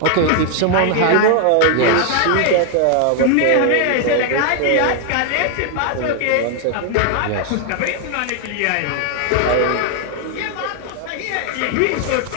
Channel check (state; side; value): different; both; correlation 0.00